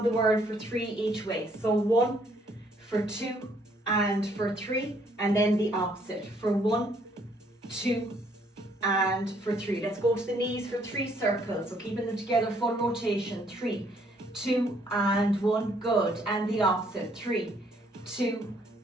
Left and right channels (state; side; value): normal; both; correlation 0.66